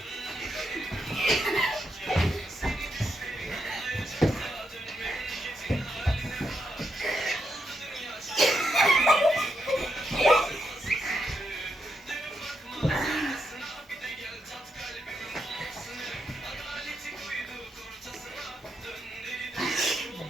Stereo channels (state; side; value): normal; both; correlation 0.82